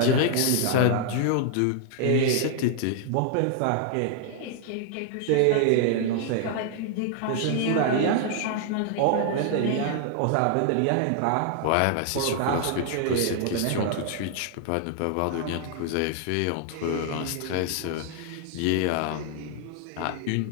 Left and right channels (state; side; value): different; both; correlation 0.00